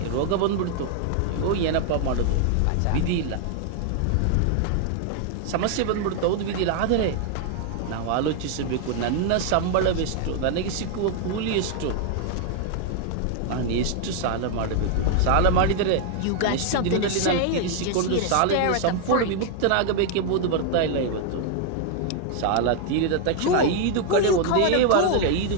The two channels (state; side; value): different; both; correlation 0.00